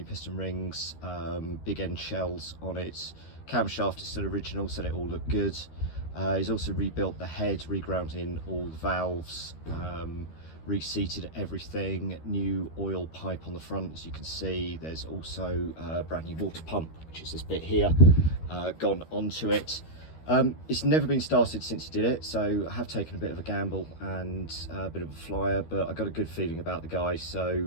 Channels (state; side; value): late; right; 13 ms